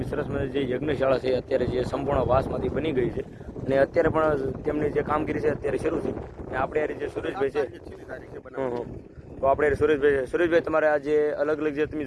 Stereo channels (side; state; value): both; identical; correlation 1.00